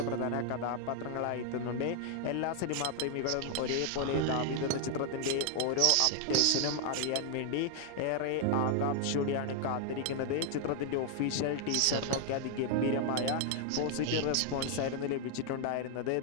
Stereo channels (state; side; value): different; both; correlation 0.00